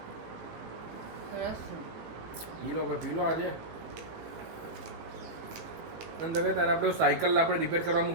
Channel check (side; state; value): left; late; 18 ms